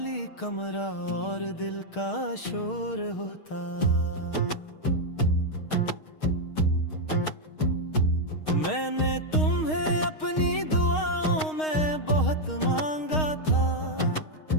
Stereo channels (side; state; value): right; late; 6.4 ms